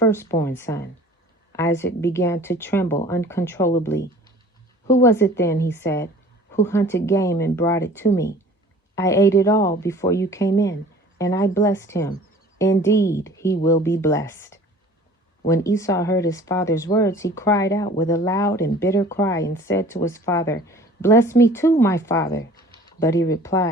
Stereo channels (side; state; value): both; normal; correlation 0.47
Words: son." Isaac began to tremble uncontrollably. "Who was it then," he said, "who hunted game and brought it to me? I ate it all before you came in, and I blessed him. Indeed, he will be blessed." When Esau heard his father's words, he cried out with a loud and bitter cry and said to his father, "Bless me too, my father." But he